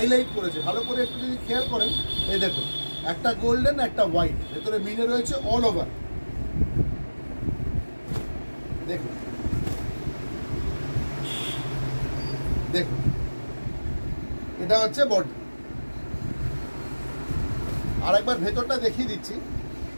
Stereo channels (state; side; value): inverted; both; correlation -1.00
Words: করেছে ভালো করে, একটু যদি খেয়াল করেন। এই দেখুন একটা গোল্ডেন, একটা হোয়াইট, ভেতরে মিনে রয়েছে অল ওভার। দেখুন দেখুন এটা হচ্ছে বডি। আর একবার ভেতরটা দেখিয়ে দিচ্ছি,